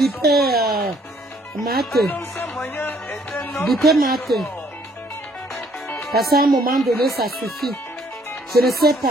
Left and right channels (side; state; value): both; normal; correlation 0.64